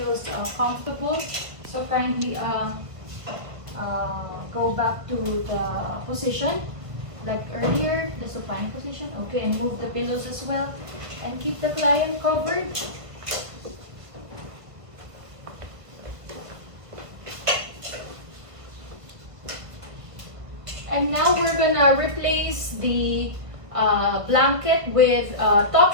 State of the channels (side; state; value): left; late; 1.6 ms